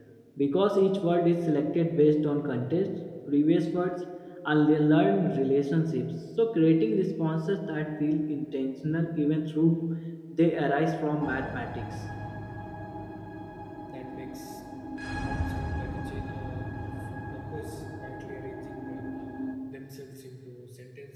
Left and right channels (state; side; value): identical; both; correlation 1.00